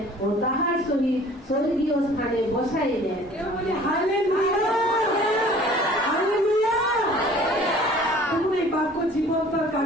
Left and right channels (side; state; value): both; normal; correlation 0.50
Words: ও তাহার সহিত স্বর্গীয় স্থানে বসাইলেন। হালেলুয়া। হালেলুয়া। এই বাক্য জীবন্ত